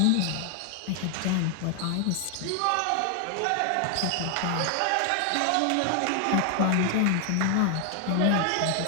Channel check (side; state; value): both; different; correlation 0.00